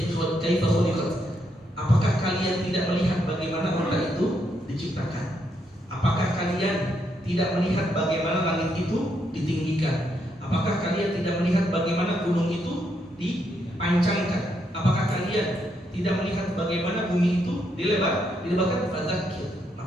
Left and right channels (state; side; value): normal; both; correlation 0.77